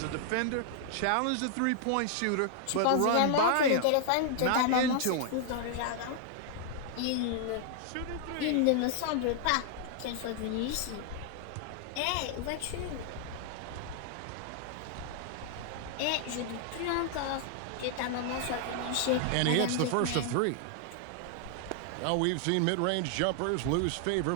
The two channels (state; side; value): different; both; correlation 0.00